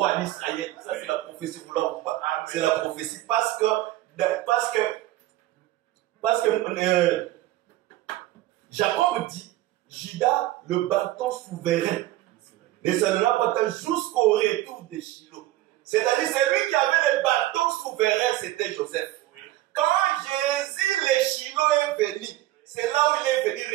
d'Israël. Ça, c'est la prophétie, vous l'avez ou pas? C'est la prophétie parce que Jacob dit, Judas, le bâton souverain, ne s'en pas tant jusqu'au retour de Shiloh. C'est-à-dire, c'est lui qui avait le bâton souverain, c'était Joseph. Quand Jésus, le Shiloh est venu, c'est là où il est venu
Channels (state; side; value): quieter; left; 15.9 dB